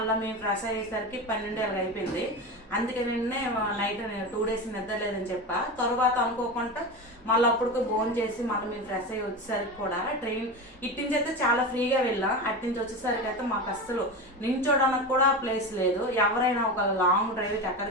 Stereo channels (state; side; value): normal; both; correlation 0.23